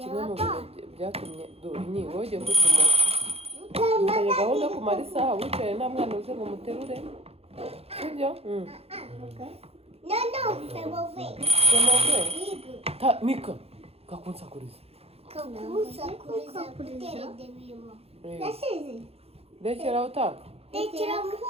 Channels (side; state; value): left; late; 0.29 ms